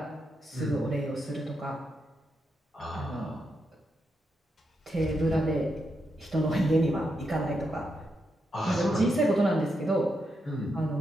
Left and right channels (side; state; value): both; normal; correlation 0.83